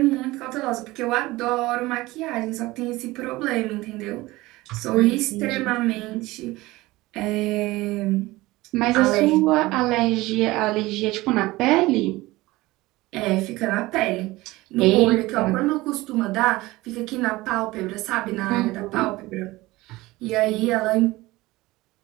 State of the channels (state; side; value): quieter; left; 19.7 dB